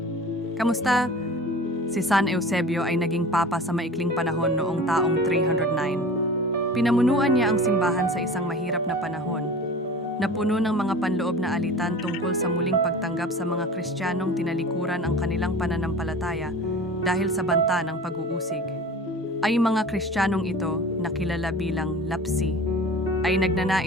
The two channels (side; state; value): both; normal; correlation 0.38